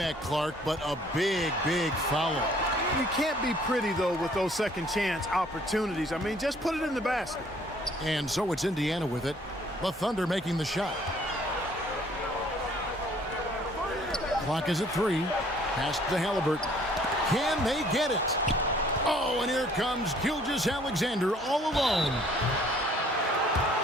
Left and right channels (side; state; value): both; normal; correlation 0.59